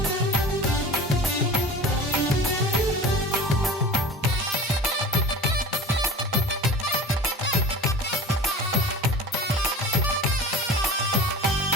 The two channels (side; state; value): both; normal; correlation 0.36